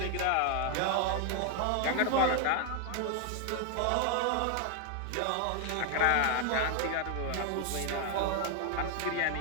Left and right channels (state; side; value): different; both; correlation 0.01